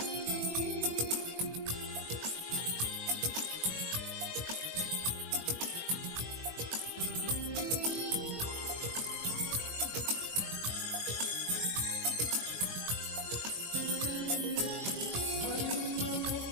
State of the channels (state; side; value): late; left; 21 ms